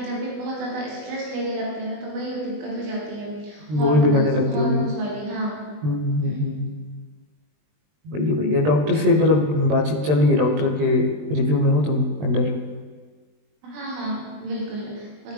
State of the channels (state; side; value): late; left; 20 ms